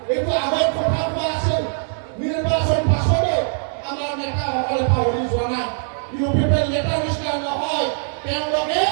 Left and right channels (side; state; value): left; silent; digital silence